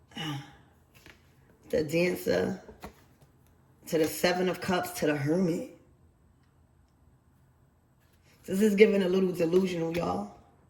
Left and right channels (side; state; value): both; identical; correlation 1.00